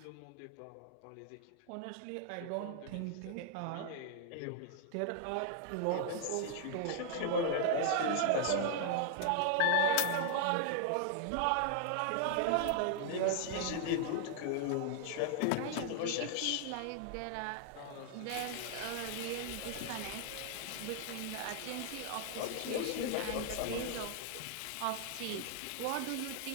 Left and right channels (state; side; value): different; both; correlation 0.00